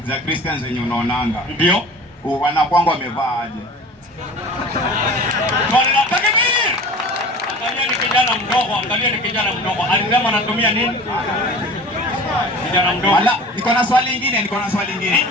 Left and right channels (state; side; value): normal; both; correlation 0.40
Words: Christians zenye unaonanga. Ndio. Wanakuanga wamevaa aje? Swali la takbir. Angalia ni kijana mdogo, angalia ni kijana mdogo. Alisema anatumia nini? Kijana mdogo. Wala, niko na swali lingine.